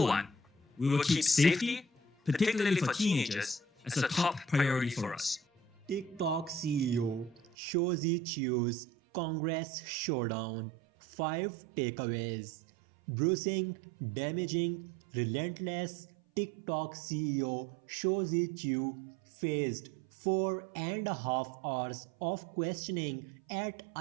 one, we will keep safety, particularly for teenagers, as a top priority for us. Tik Tok CEO Shou's Congress Showdown 5 Takeaways. Bruising, damaging, relentless. Tik Tok CEO Shou faced 4.5 hours of questioning at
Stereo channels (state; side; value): drops out; left; at 7.5 s